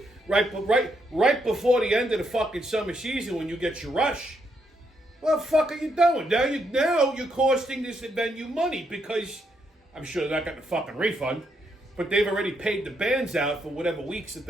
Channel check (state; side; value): normal; both; correlation 0.77